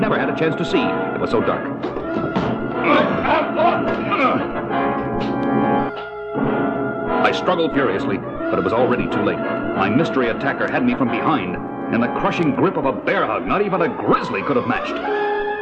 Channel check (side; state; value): both; identical; correlation 1.00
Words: had a chance to see. It was so dark. I struggled furiously, but it was already too late. My mystery attacker had me from behind, in the crushing grip of a bear hug not even a grizzly could have matched.